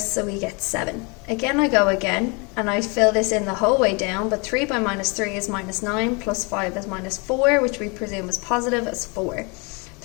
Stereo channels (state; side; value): quieter; right; 31.1 dB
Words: we get 7. Again, I go again, and I fill this in the whole way down, but 3 by -3 is -9, plus 5 is -4, which we presume is positive, as 4.